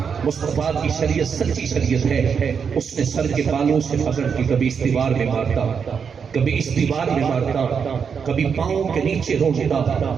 مصطفیٰ کی شریعت سچی شریعت ہے۔ اس نے سر کے بالوں سے پکڑ کے کبھی اس دیوار میں مارتا، کبھی اس دیوار میں مارتا، کبھی پاؤں کے نیچے روکتا۔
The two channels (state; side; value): quieter; left; 6.5 dB